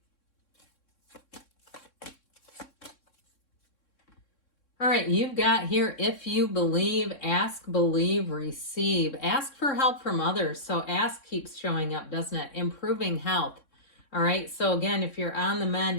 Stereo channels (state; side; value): late; right; 3.6 ms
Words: All right, you've got here, if you believe, ask, believe, receive. Ask for help from others. So ask keeps showing up, doesn't it? Improving health. All right, so again, if you're on the